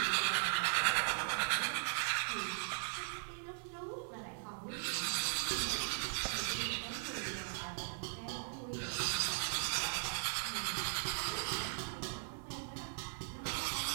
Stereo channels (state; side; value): silent; left; digital silence